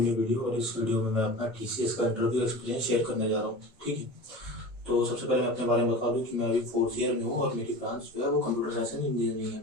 video. और इस video में मैं अपना टीसीएस का इंटरव्यू एक्सपीरियंस शेयर करने जा रहा हूँ। ठीक है, तो सबसे पहले मैं अपने बारे में बता दूँ कि मैं अभी फोर्थ ईयर में हूँ और मेरी ब्रांच जो है वो कंप्यूटर साइंस एंड इंजीनियरिंग है।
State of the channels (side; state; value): both; normal; correlation 0.33